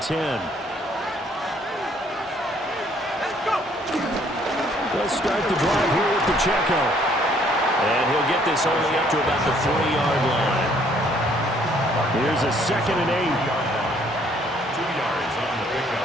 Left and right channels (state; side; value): normal; both; correlation 0.63